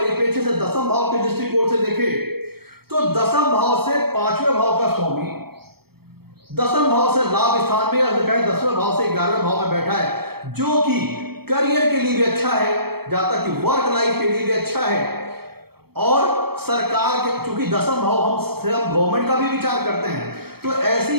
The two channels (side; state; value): left; late; 0.96 ms